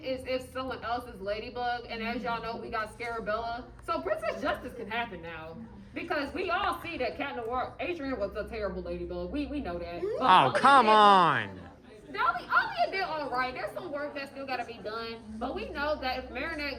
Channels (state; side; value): identical; both; correlation 1.00